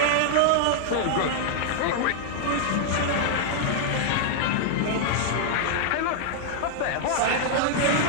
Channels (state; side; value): different; both; correlation -0.01